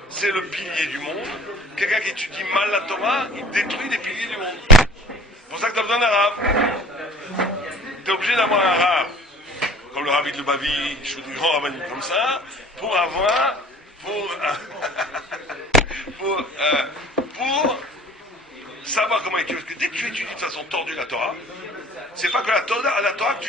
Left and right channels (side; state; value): both; normal; correlation 0.48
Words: c'est le pilier du monde. Quelqu'un qui étudie mal la Torah, il détruit les piliers du monde. C'est pour ça que tu as besoin d'un rave. Tu es obligé d'avoir un rave, comme le Rabbi de Lubavitch ou des grands rabbins comme ça, pour savoir comment étudier. Parce que dès que tu étudies de façon tordue la Torah, c'est pas que la Torah que